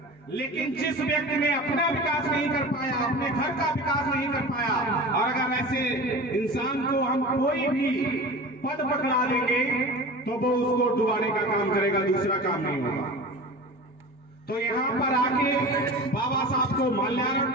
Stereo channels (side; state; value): both; normal; correlation 0.34